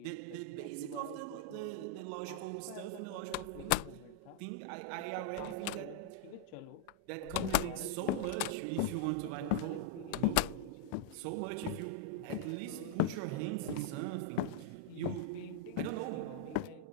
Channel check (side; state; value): both; different; correlation -0.01